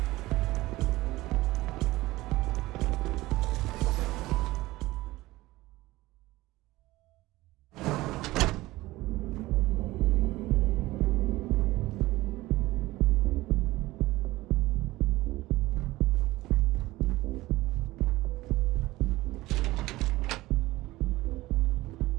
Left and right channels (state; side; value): quieter; left; 18.5 dB